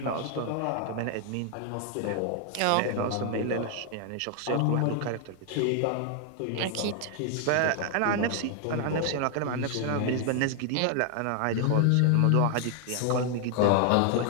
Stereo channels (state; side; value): different; both; correlation 0.00